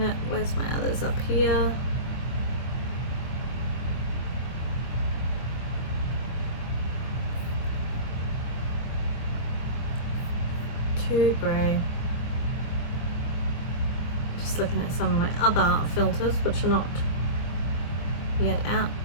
it. Where's my others? Up here. Too grey. Just looking at some of my other filters, which are not yet out.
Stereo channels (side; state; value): right; late; 24 ms